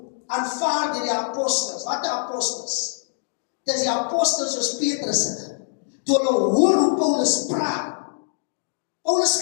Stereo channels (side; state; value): right; silent; digital silence